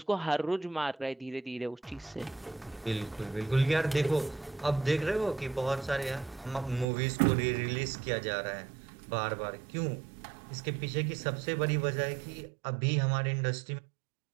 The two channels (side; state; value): left; drops out; at 6.9 s